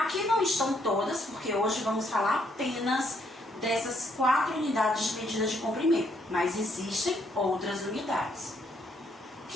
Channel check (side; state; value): both; normal; correlation 0.71